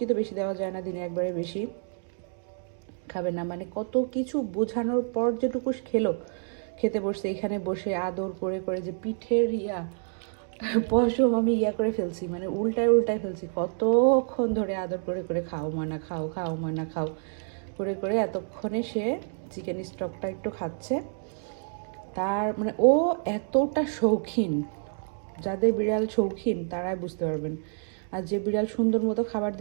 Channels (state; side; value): silent; left; digital silence